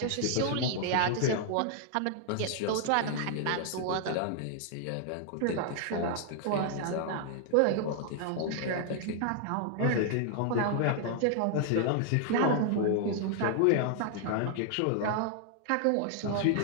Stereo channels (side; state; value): both; different; correlation 0.00